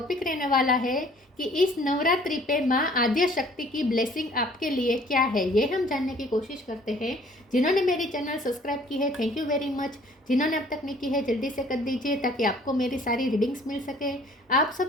रहने वाला है कि इस नवरात्रि पे माँ आद्य शक्ति की ब्लेसिंग आपके लिए क्या है, ये हम जानने की कोशिश करते हैं। जिन्होंने मेरी चैनल सब्सक्राइब की है, थैंक यू वेरी मच। जिन्होंने अब तक नहीं की है, जल्दी से कर दीजिए ताकि आपको मेरी सारी रीडिंग्स मिल सके। आप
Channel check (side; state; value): both; normal; correlation 0.55